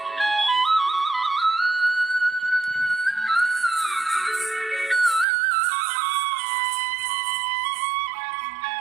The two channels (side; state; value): left; drops out; at 5.2 s